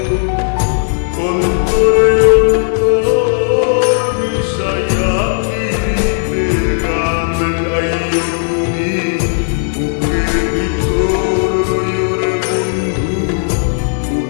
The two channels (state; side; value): silent; right; digital silence